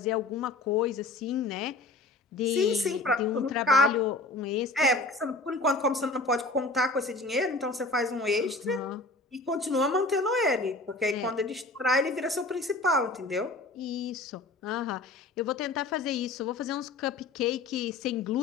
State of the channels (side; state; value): right; quieter; 3.2 dB